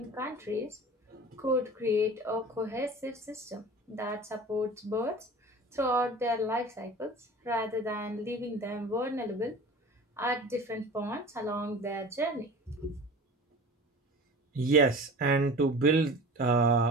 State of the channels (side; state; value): both; normal; correlation 0.38